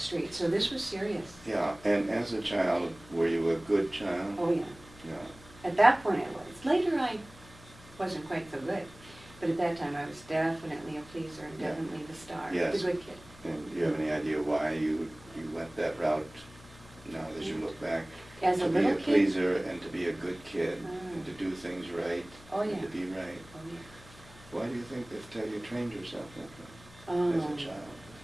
street. So this was serious. Yeah, and as a child, were you a good child? Oh, yeah. Yeah. At that point I was. Later I wasn't quite so good. But at that time I was definitely a pleaser and Yeah. definitely the star. Yes. The good kid. And do you have any idea why you went that route now as you look back? As a To be little a kid? pleaser and to be a good kid Mm. and to do things right Oh, and yeah. to be right. Oh, yeah. Why do you think that you trained yourself that way as a child?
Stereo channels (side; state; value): left; noise; hum, 21 dB below the sound